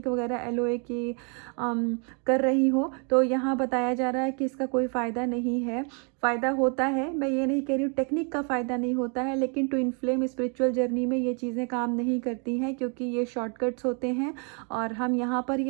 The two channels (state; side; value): quieter; left; 37.5 dB